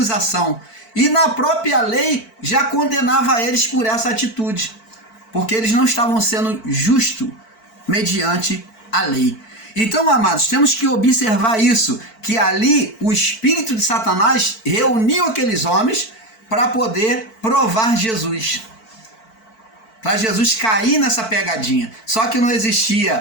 e na própria lei já condenava eles por essa atitude, porque eles não estavam sendo justos mediante a lei. Então, amados, temos que observar isso, que ali o espírito de Satanás reuniu aqueles homens para poder provar Jesus, para Jesus cair nessa pegadinha. Só que não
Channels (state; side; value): late; right; 4.5 ms